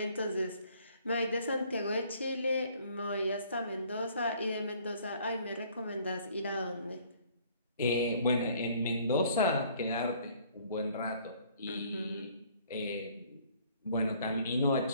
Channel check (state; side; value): inverted; both; correlation -0.59